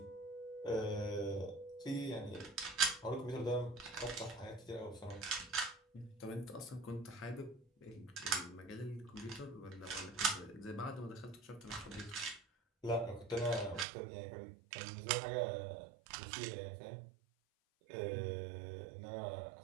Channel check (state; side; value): drops out; left; at 13.9 s